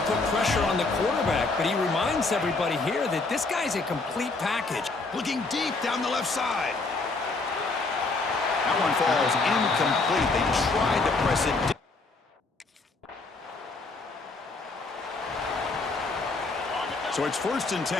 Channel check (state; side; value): quieter; right; 3.6 dB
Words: put pressure on the quarterback, but he reminds everybody here that this guy's a complete package. Looking deep down the left side. That one falls incomplete. They tried to press it deep. So it's 1st and